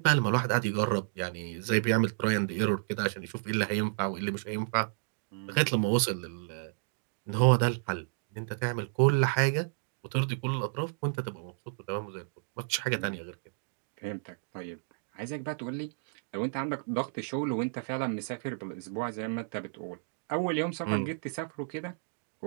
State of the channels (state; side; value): silent; left; digital silence